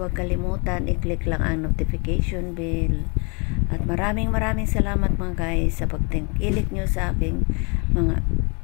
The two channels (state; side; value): quieter; right; 33.1 dB